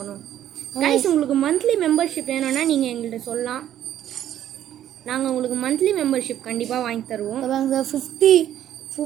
கைஸ் உங்களுக்கு மந்த்லி மெம்பர்ஷிப் வேணும்னா நீங்கள் எங்கள்கிட்ட சொல்லலாம். நாங்கள் உங்களுக்கு மந்த்லி மெம்பர்ஷிப் கண்டிப்பாக வாங்கி தருவோம். சார்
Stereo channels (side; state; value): left; quieter; 11.4 dB